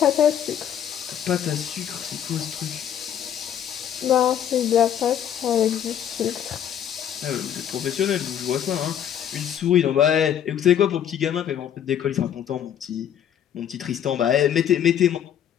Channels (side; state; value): right; quieter; 9.6 dB